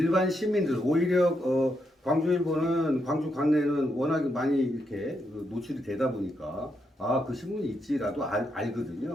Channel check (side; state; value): both; normal; correlation 0.81